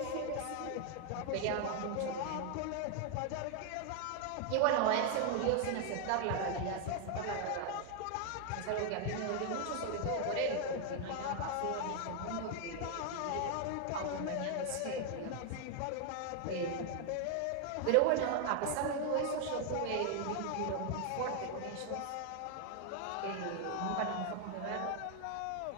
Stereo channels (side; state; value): both; different; correlation 0.00